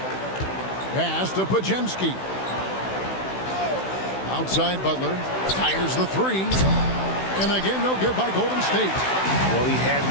Pass to Pajemski. Outside Butler. Fires the 3. And again, no good by Golden State. Well, he had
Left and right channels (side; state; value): right; late; 16 ms